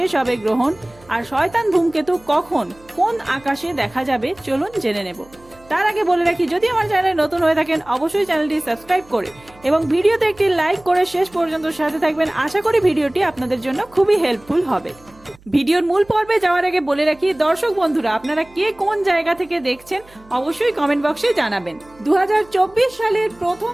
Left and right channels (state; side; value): noise; right; hum, 26 dB below the sound